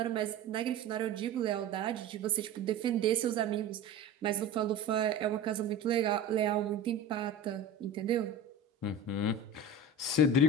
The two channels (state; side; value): quieter; left; 3.6 dB